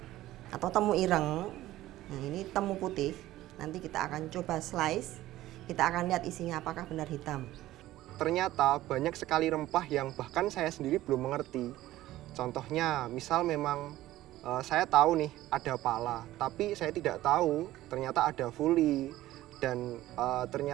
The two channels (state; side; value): quieter; left; 15.4 dB